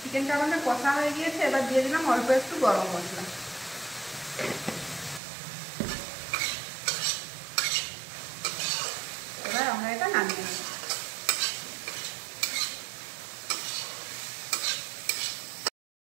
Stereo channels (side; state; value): left; drops out; at 5.2 s